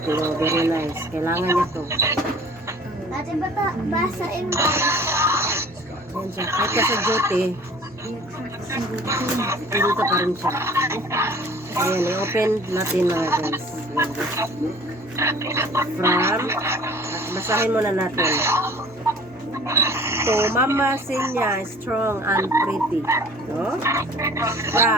Oh, very nice. Kailangan niya to. Dati bata, basain mo. Yan siya. Kahit ka sa duty, dito pa rin siya. Ayan, i-open natin mga guys. From, basahin muna natin. To Mama Sinya, strong and pretty. No?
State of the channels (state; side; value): normal; both; correlation 0.48